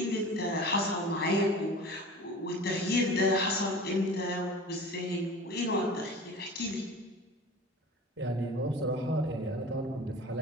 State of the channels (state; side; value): normal; both; correlation 0.38